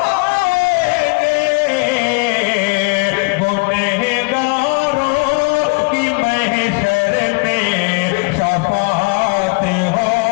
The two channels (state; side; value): quieter; right; 31.2 dB